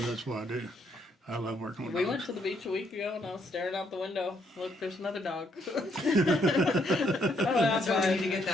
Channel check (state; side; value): normal; both; correlation 0.72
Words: that's what I do. I love working with We dogs. went to the beach a week ago, and I was staring out the window. Look, there's another dog. That's why we need to get